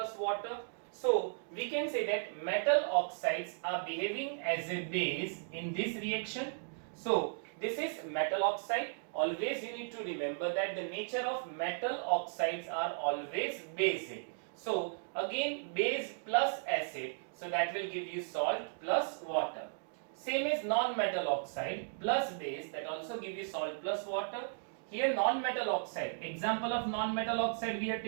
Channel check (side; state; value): left; silent; digital silence